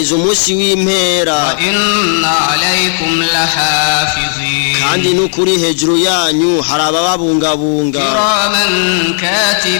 umunsi w'impera وإن عليكم لحافظين kandi n'ukuri hejuru yanyu hari abababungabunga كراما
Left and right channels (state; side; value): silent; right; digital silence